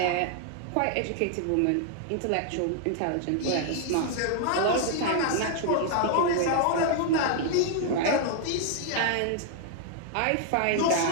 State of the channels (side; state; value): both; different; correlation -0.01